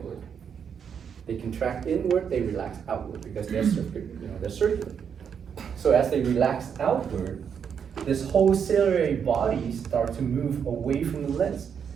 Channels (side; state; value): left; quieter; 7.4 dB